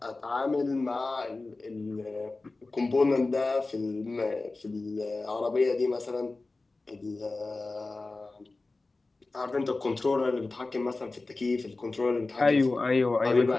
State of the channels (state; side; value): quieter; right; 3.4 dB